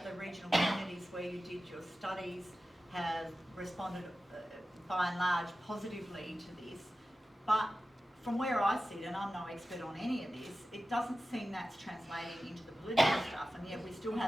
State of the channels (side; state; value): both; normal; correlation 0.94